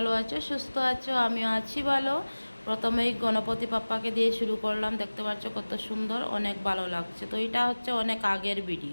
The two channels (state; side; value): inverted; both; correlation -1.00